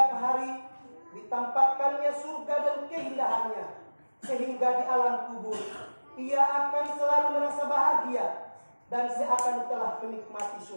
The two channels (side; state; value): both; inverted; correlation -1.00